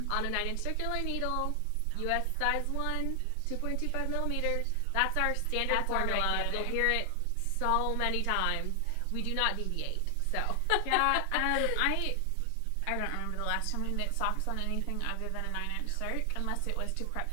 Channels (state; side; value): different; both; correlation 0.00